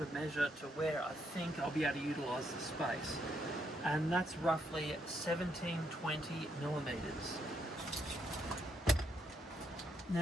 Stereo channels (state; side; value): normal; both; correlation 0.75